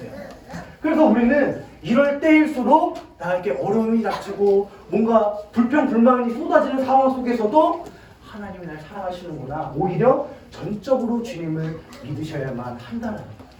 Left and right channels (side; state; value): both; identical; correlation 1.00